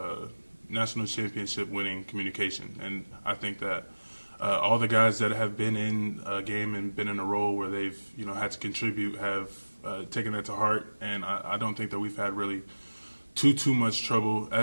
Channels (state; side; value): inverted; both; correlation -1.00